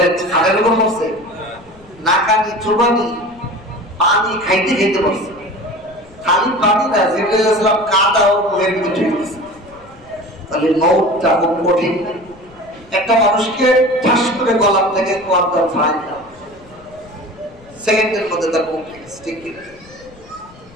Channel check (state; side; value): noise; left; rumble, 24 dB below the sound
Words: খাদের উপর মরছে, নাকানি চুবানি পানি খাইতে খাইতে মরছে। খালি পানি না, জিবরাইল আলাইহিস সালাম কাদা ও মুখের ভিতরে ঢুকে গেছে। তাহলে মওতটা খুব কঠিন। একটা মানুষকে ঠাস করে গলা থেকে কোয়ার্টা ফাইন দাও, সেকেন্ডের মধ্যে তার মুখ গেছে, ঠিক কি না?